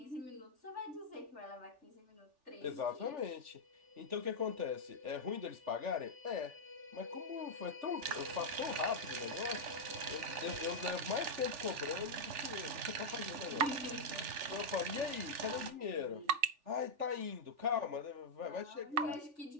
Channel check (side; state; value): left; late; 3.4 ms